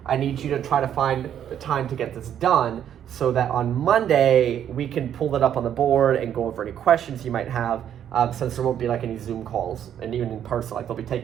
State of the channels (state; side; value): quieter; left; 9.8 dB